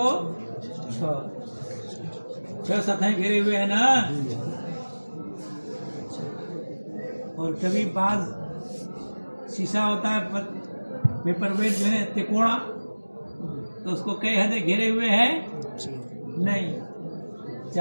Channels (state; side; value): inverted; both; correlation -1.00